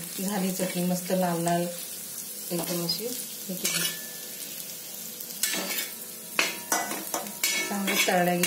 झाली चटणी, मस्त लाल लाल एकदम अशी चांगली तळल्या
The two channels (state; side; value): identical; both; correlation 1.00